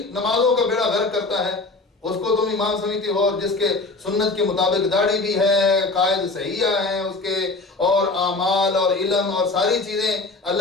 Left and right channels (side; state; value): right; quieter; 3.4 dB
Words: نمازوں کا بیڑا غرق کرتا ہے، اس کو تم امام سمجھتے ہو، اور جس کے سنت کے مطابق داڑھی بھی ہے، قائد صحیحہ ہیں اس کے، اور اعمال اور علم اور ساری چیزیں